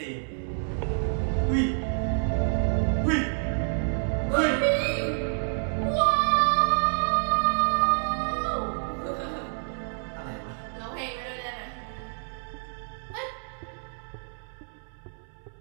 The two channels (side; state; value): left; silent; 59 dB below the other